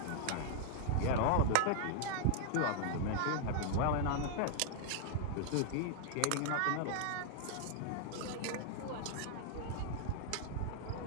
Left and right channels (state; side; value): different; both; correlation 0.00